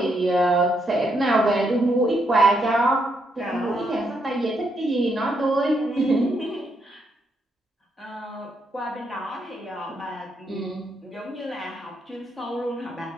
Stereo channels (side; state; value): both; normal; correlation 0.77